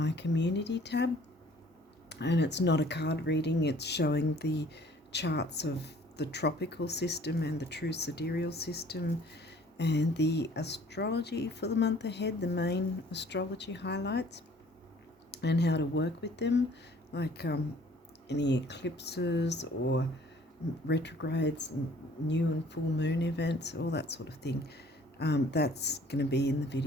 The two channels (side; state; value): both; normal; correlation 0.55